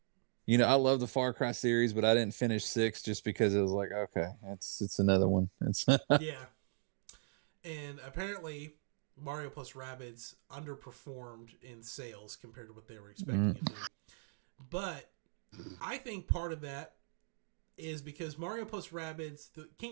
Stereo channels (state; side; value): silent; left; digital silence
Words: You know, I love the Far Cry series, but I didn't finish 6 just because it was like, okay, it's another one. It's yeah. And apparently Mario plus Rabbids underperformed in sales compared to what they were expecting it to. But I think part of that is because Mario plus Rabbids, the